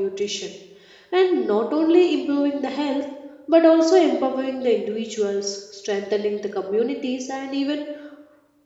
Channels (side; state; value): both; identical; correlation 1.00